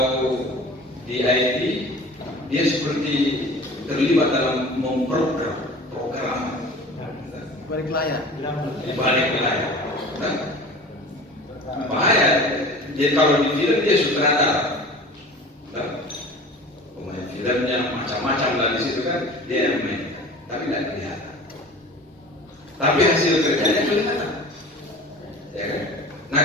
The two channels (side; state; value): both; normal; correlation 0.40